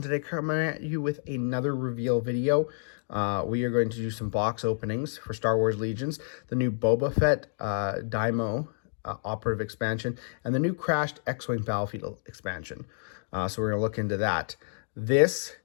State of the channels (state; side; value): silent; right; digital silence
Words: today coming at you with another reveal video. We are going to do some box openings for Star Wars Legions, the new Boba Fett Daimyo Operative expansion, and the new crashed X-Wing Battlefield expansion. So we're going to look into that. This